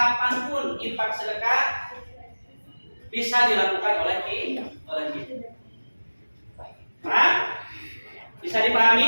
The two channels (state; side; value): inverted; both; correlation -1.00